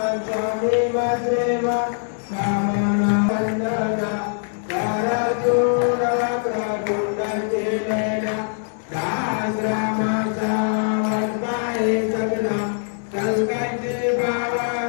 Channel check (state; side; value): silent; right; digital silence